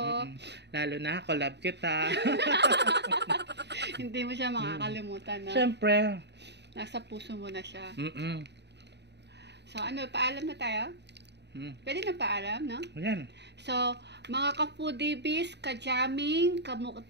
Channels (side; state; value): left; late; 0.50 ms